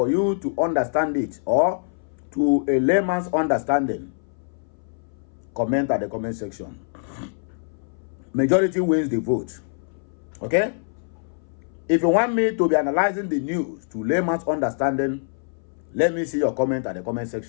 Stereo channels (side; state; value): right; silent; 59 dB below the other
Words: you to understand it, or to a layman's understanding, comment at the comment section. Majority wins the vote. Okay? If you want me to be analyzing the news to layman's understanding, let me see your comment at the comment